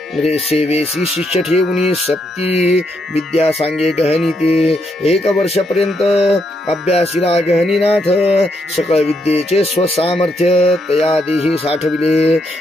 रे सेवेसी शिष्य ठेवणी सप्ती विद्या सांगे गहनी ते एक वर्षपर्यंत अभ्यासीला गहनीनाथ सकळ विद्येचे स्वसामर्थ्य तयादेही साठविले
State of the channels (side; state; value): both; normal; correlation 0.78